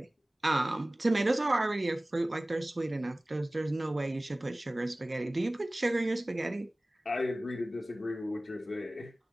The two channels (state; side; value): normal; both; correlation 0.98